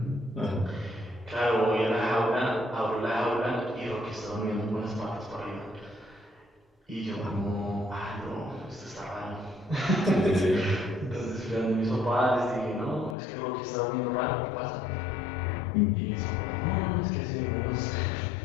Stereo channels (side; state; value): right; drops out; at 13.2 s